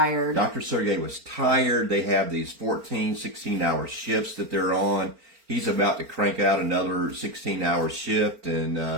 Dr. Sergey was tired. They have these 14, 16-hour shifts that they're on. He's about to crank out another 16-hour shift,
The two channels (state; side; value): late; left; 4.4 ms